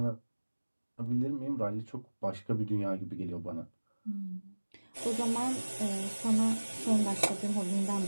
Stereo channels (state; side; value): inverted; both; correlation -1.00